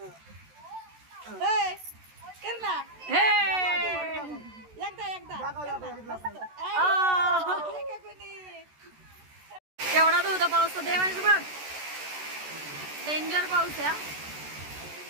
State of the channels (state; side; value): late; left; 14 ms